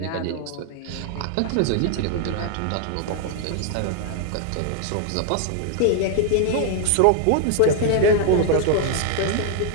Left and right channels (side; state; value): both; different; correlation 0.00